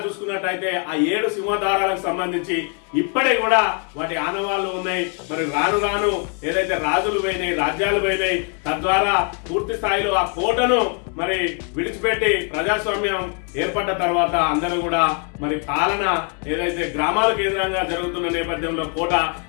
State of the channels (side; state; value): right; quieter; 38.7 dB